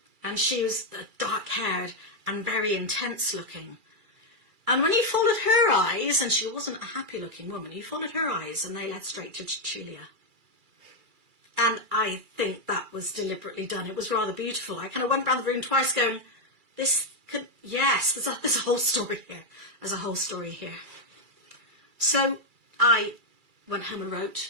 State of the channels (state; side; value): late; left; 2.3 ms